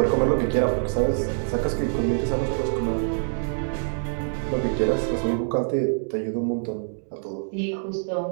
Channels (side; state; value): left; silent; digital silence